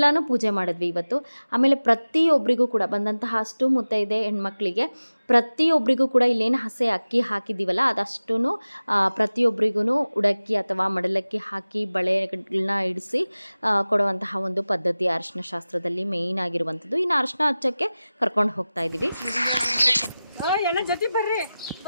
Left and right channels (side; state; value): both; inverted; correlation -0.97